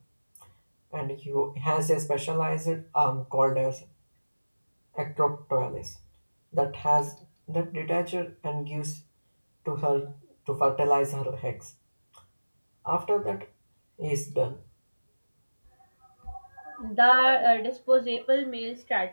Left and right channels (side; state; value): both; inverted; correlation -1.00